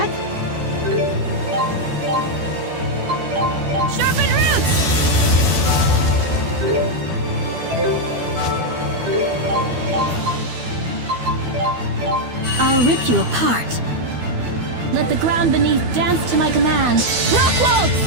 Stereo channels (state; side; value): late; left; 12 ms